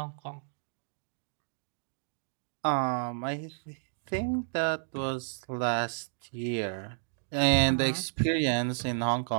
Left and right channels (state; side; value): silent; left; digital silence